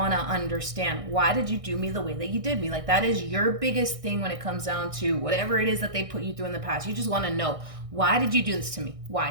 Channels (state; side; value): late; left; 1.6 ms